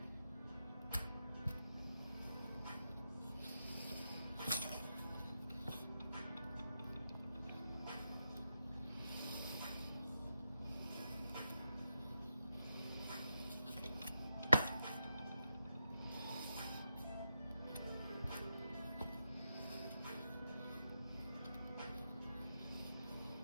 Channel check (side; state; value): both; inverted; correlation -0.85